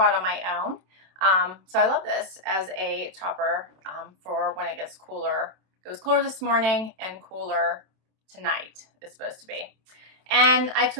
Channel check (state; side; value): late; left; 27 ms